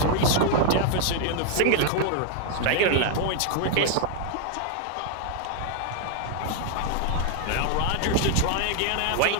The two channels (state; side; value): different; both; correlation 0.00